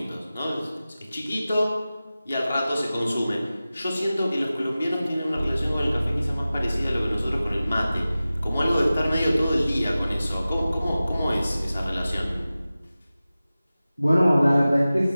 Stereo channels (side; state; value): both; inverted; correlation -0.96